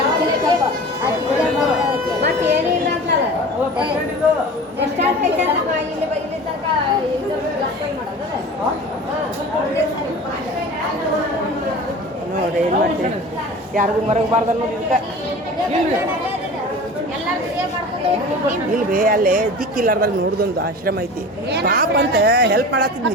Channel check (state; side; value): normal; both; correlation 0.37